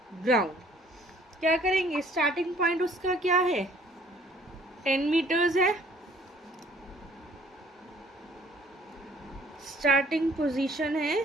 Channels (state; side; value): normal; both; correlation 0.58